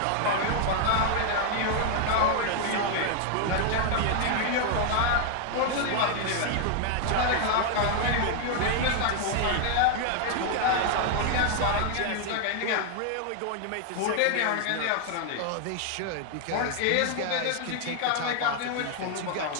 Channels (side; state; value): both; different; correlation 0.00